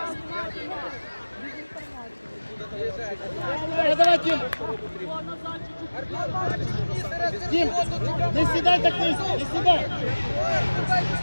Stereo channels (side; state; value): both; inverted; correlation -1.00